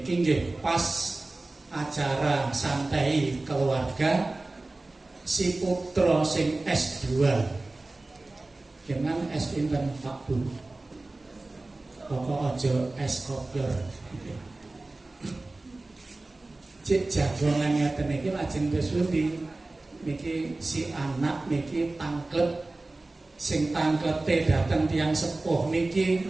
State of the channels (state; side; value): quieter; left; 3.0 dB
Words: nggih pas acara santai keluarga si putra sing S2. Jangan S pinten Pak Bu. Pokok aja S kopior. Cek jagongan ngeten niki lajeng kesundi niki si anak niki tangklet. Sing tangklete datang tiang sepuh niki